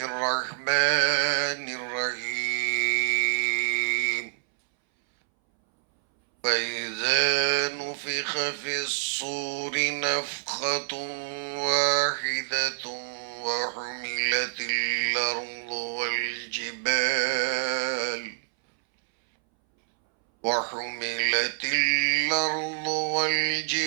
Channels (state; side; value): silent; left; 60 dB below the other